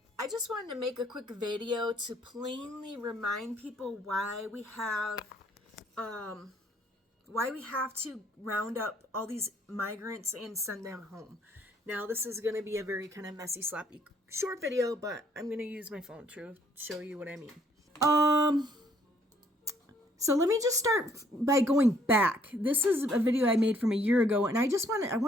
I just wanted to make a quick video to plainly remind people why we have to round up all these migrants and send them home. Now, this is going to be a very kind of messy, sloppy, short video, but I'm going to use my phone to show you what I mean. So let me just start by going back. This is a video I made from a year ago, and I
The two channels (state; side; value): normal; both; correlation 0.64